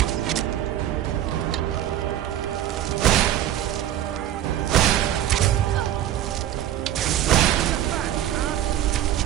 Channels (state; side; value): quieter; left; 12.0 dB